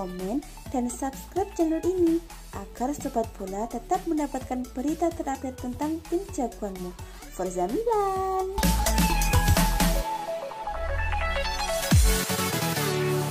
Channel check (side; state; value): both; identical; correlation 1.00